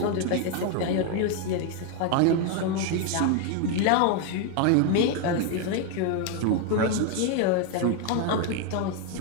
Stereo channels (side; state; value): both; different; correlation 0.01